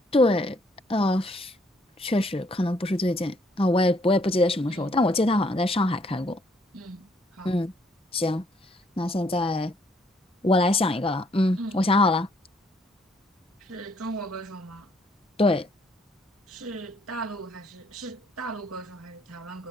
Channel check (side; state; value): both; normal; correlation 0.67